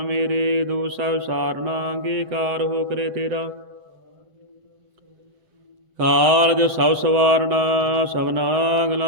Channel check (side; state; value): left; late; 7.7 ms